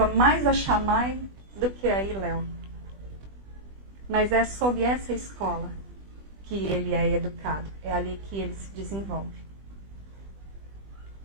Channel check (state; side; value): late; left; 20 ms